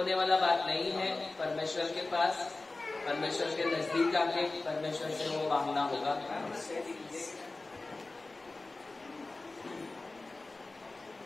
वाला बात नहीं है। परमेश्वर के पास, परमेश्वर के नजदीक आके परमेश्वर से वो मांगना होगा।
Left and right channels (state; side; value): quieter; right; 3.2 dB